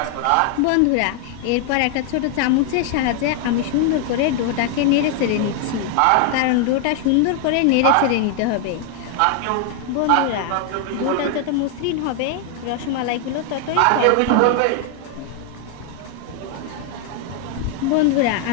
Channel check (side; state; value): both; different; correlation 0.00